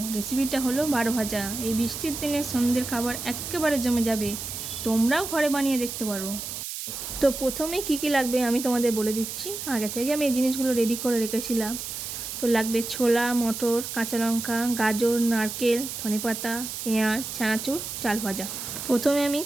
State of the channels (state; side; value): noise; right; hiss, 7 dB below the sound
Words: রেসিপিটা হলো বারো ভাজা। এই বৃষ্টির দিনে সন্ধ্যের খাবার একেবারে জমে যাবে। তোমরাও ঘরে বানিয়ে দেখতে পারো। তো প্রথমে কি কি লাগবে আমি তোমাদের বলে দিচ্ছি। আগে থেকে আমি এই জিনিসগুলো রেডি করে রেখেছিলাম। তো লাগবে ছোলা, মটর, কাঁচা লঙ্কা, গাজর, নারকেল, ধনেপাতা, পেঁয়াজ, চানাচুর, চাল ভাজা। প্রথমে আমি